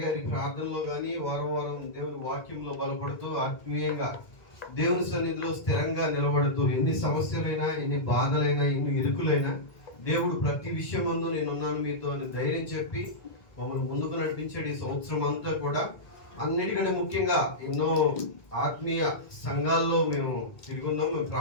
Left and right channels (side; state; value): right; late; 1.7 ms